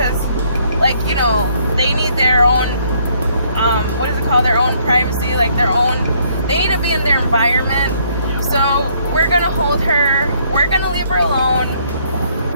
like, you know, they need their own, what is it called? Their own privacy, like they need to be in their environment. So we're gonna hold her. We're gonna leave her alone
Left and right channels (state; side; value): inverted; both; correlation -0.67